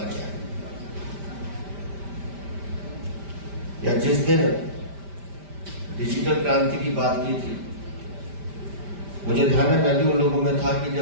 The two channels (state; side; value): late; left; 5.1 ms